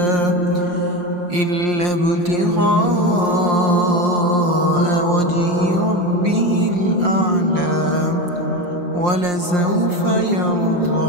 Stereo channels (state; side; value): late; left; 5.7 ms